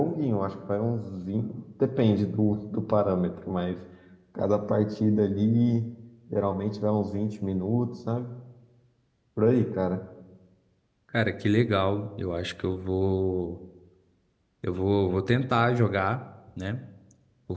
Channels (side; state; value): both; identical; correlation 1.00